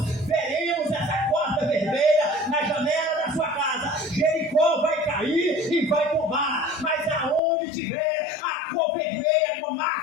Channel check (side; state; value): right; drops out; at 7.4 s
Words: na janela da sua casa. Jericó vai cair e vai tombar, mas aonde tiver a cor vermelha com